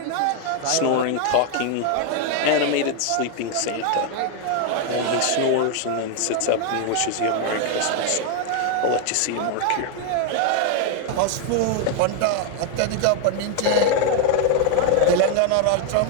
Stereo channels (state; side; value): different; both; correlation 0.01